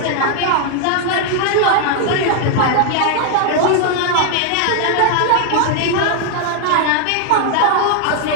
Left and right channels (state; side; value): different; both; correlation 0.00